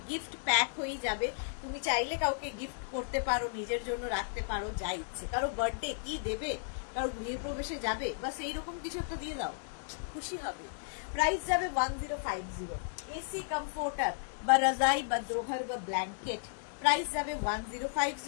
গিফট প্যাক হয়ে যাবে, তুমি চাইলে কাউকে গিফট করতে পারো, নিজের জন্য রাখতে পারো, যা ইচ্ছে। কারো বার্থডে কি দেবে, কারো গৃহপ্রবেশে যাবে, বা সেই রকম কিছু একটা দিয়ে দাও, খুশি হবে। প্রাইস যাবে 1050। এসি কমফোর্টার বা রাজাই বা দোভার বা ব্ল্যাঙ্কেট, প্রাইস যাবে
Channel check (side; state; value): right; silent; digital silence